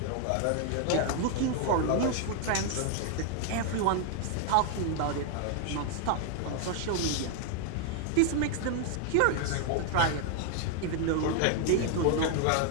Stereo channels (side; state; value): both; different; correlation 0.00